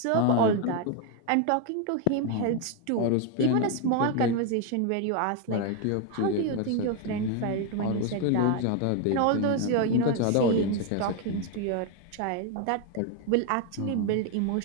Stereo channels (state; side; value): different; both; correlation 0.01